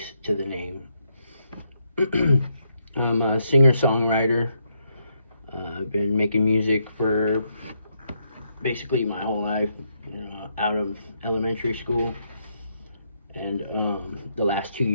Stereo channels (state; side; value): inverted; both; correlation -0.77